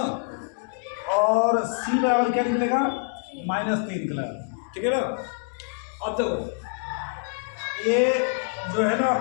और सी बराबर क्या निकलेगा, -3 निकलेगा, ठीक है ना। अब देखो ये जो है ना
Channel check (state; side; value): silent; right; digital silence